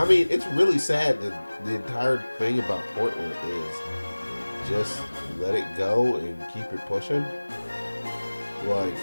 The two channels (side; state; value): both; inverted; correlation -1.00